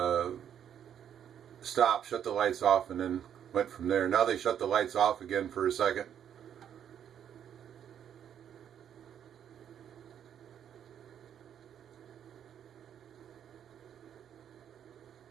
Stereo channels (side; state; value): left; quieter; 9.2 dB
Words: stopped, shut the lights off, and then went from there. Now they shut the lights off again for a second.